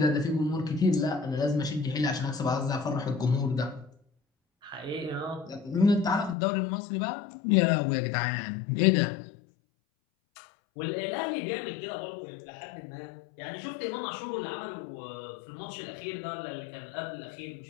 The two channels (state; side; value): drops out; right; at 6.4 s